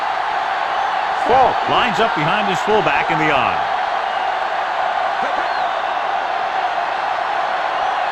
Ball lines up behind his fullback in the I.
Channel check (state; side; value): identical; both; correlation 1.00